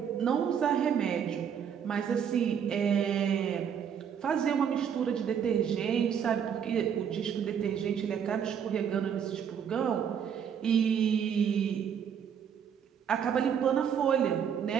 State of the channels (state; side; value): quieter; left; 7.9 dB